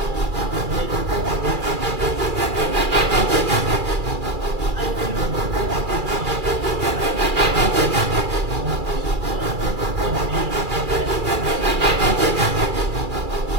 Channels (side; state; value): left; late; 2.4 ms